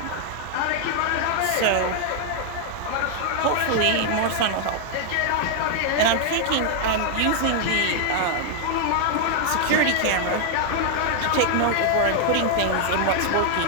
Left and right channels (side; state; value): both; different; correlation 0.00